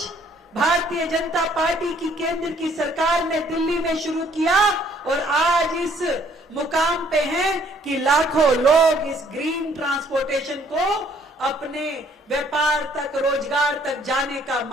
भारतीय जनता पार्टी की केंद्र की सरकार ने दिल्ली में शुरू किया और आज इस मुकाम पे हैं कि लाखों लोग इस ग्रीन ट्रांसपोर्टेशन को अपने व्यापार तक, रोजगार तक जाने का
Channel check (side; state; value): both; normal; correlation 0.62